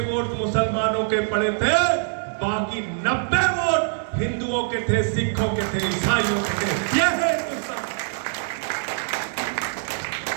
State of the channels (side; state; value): left; silent; digital silence